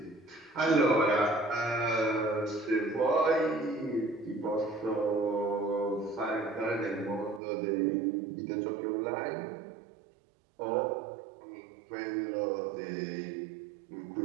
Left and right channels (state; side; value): drops out; left; at 7.4 s